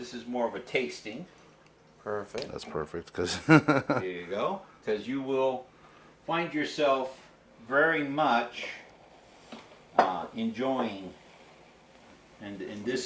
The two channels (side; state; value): both; identical; correlation 1.00